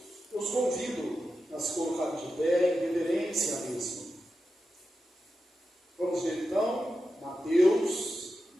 eu os convido a se colocar de pé em reverência à mesma. Vamos ver então, Mateus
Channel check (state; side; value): normal; both; correlation 0.90